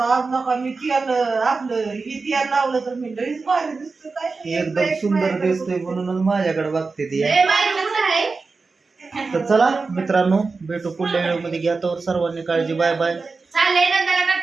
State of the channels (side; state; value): left; quieter; 4.2 dB